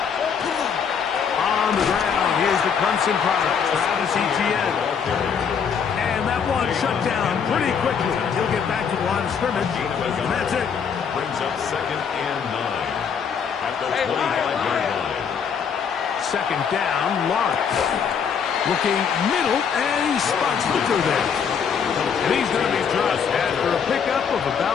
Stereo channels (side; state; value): right; quieter; 6.9 dB